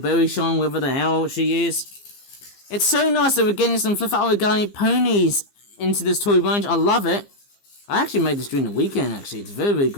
Shine, whatever the hell she is. It's so nice that we're getting some Flip Out Origami ponies into this toy range. I love it. I actually made this during the weekend, actually. It's very, very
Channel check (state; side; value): late; right; 15 ms